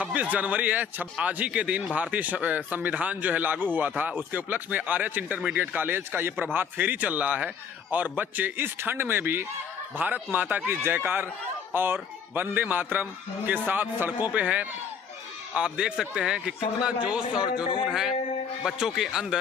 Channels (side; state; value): right; quieter; 7.0 dB